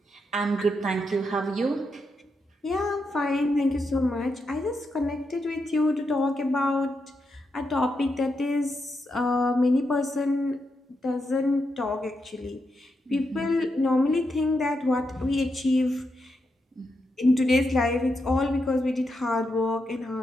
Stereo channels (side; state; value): both; normal; correlation 0.84